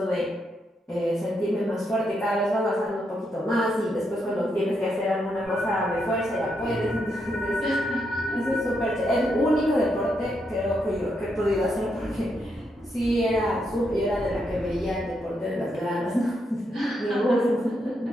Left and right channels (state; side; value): normal; both; correlation 0.80